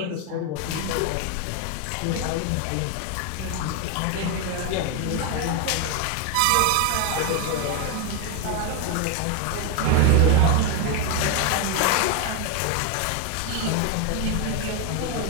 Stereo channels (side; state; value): both; different; correlation 0.01